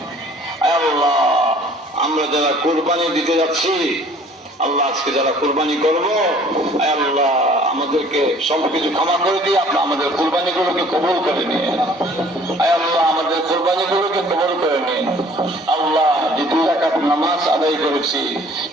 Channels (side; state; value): both; normal; correlation 0.53